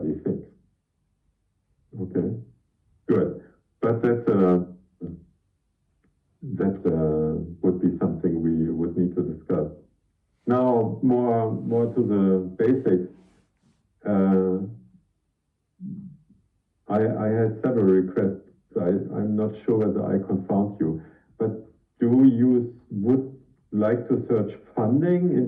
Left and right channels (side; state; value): both; identical; correlation 1.00